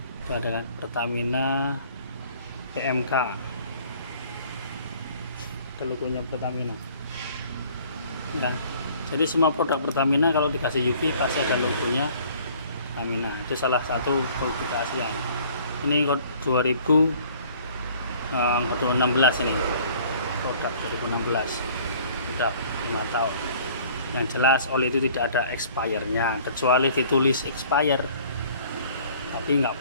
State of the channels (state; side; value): inverted; both; correlation -0.54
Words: Itu ada kan Pertamina PMK, ada logonya Pertamina. Nah, jadi semua produk Pertamina kalau dikasih UV pasti ada logonya Pertamina. Itu salah satu produk keaslian. Ini kode 2016 ini, produk 2016, udah 5 tahun. Yang jelas oli itu tidak ada expirednya, kecuali ditulis expired, tapi nggak